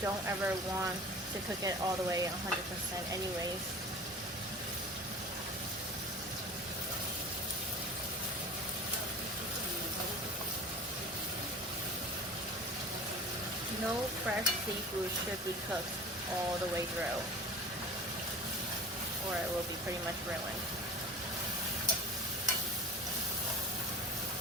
ever want to cook it all the way 100% anyways. No fresh seafood should be cooked all the way through, or it will be pretty much ruined.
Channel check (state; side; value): normal; both; correlation 0.39